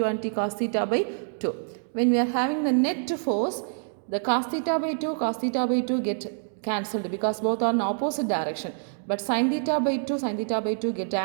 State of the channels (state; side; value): silent; left; digital silence